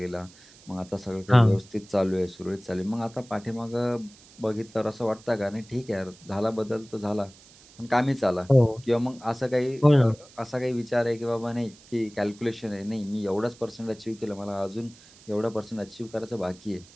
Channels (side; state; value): right; noise; hiss, 24 dB below the sound